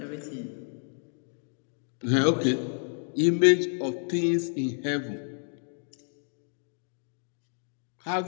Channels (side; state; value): right; silent; digital silence